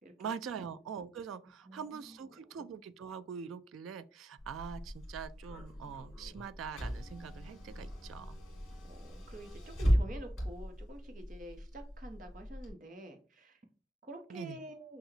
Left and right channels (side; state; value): both; normal; correlation 0.83